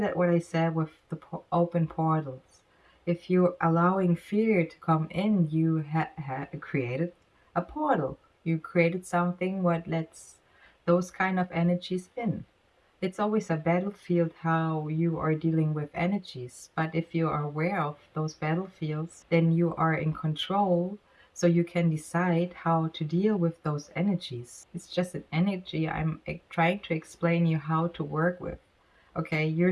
what I said with the open portals. If you're allowing fear to come in, you created a portal. You created something what lets those kind of energies in. It's always a battlefield how you are dealing with energies. But if you are aware of those battlefields, then you are in control. So you can decide how to deal with those energies. It's just an energy. I'm trying to explain you how to work with. Okay, you're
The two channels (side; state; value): both; identical; correlation 1.00